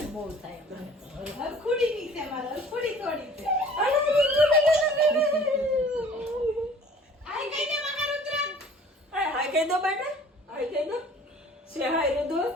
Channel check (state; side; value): normal; both; correlation 0.49